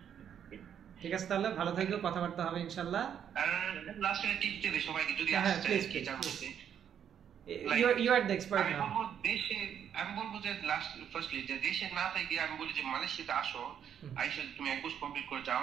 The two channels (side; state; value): left; quieter; 8.8 dB